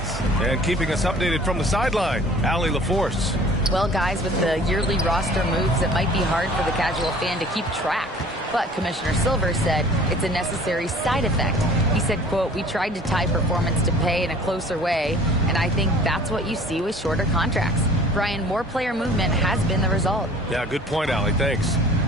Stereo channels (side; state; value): both; normal; correlation 0.49